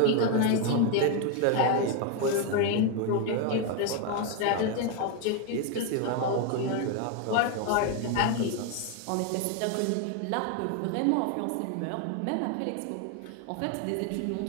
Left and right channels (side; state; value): both; different; correlation 0.01